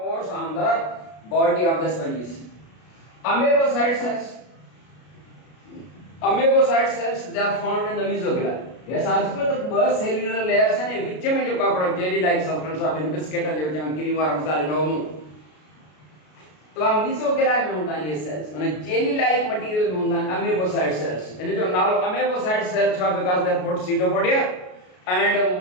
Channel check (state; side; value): late; right; 33 ms